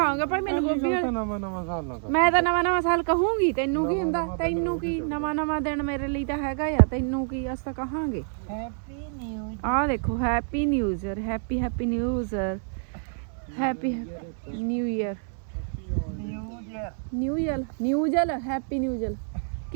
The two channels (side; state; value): left; silent; digital silence